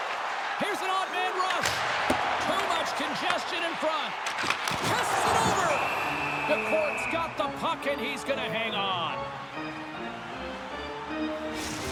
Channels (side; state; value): both; identical; correlation 1.00